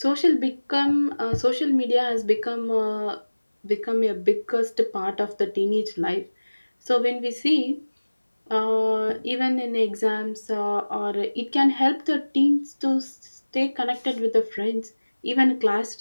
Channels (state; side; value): inverted; both; correlation -1.00